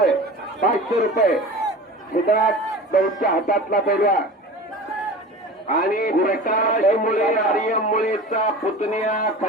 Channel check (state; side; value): normal; both; correlation 0.36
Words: 500 रुपये सिद्धराज दौडच्या हातातला पैलवान आणि प्रकाश मुळे आर्यम मुळेचा पुतण्या